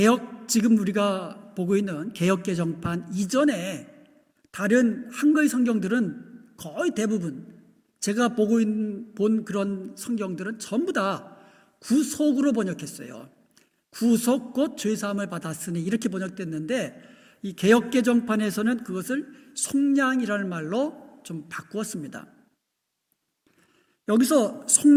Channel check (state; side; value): identical; both; correlation 1.00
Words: 지금 우리가 보고 있는 개역개정판 이전에 다른 한글 성경들은 거의 대부분 제가 본 그런 성경들은 전부 다 구속으로 번역했어요. 구속 곧 죄사함을 받았으니 이렇게 번역됐는데 이 개역개정판에서는 그것을 속량이라는 말로 좀 바꾸었습니다. 여기서